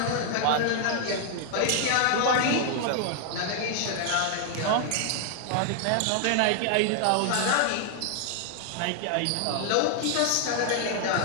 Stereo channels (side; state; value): both; different; correlation 0.00